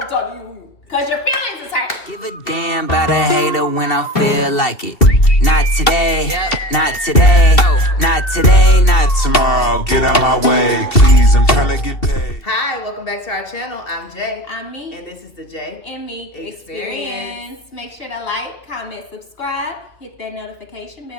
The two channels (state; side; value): late; right; 2.7 ms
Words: to talk to you. Because your feelings is hurt. Give a damn about a hater when I feel like it. Not today, not today, not today, not tomorrow. Get out my way, please, I'm trying to get paid. Hi, welcome back to our channel. I'm Jay. I'm Me. And this is the Jay And Me Experience. Make sure to like, comment, subscribe, hit that notification